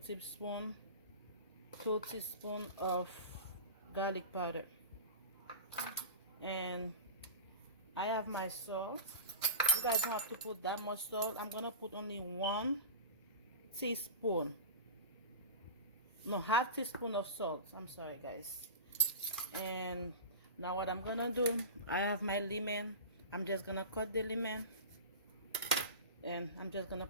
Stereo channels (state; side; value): inverted; both; correlation -0.30